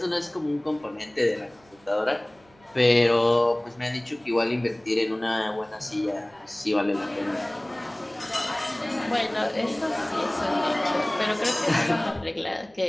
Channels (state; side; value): noise; right; hum, 30 dB below the sound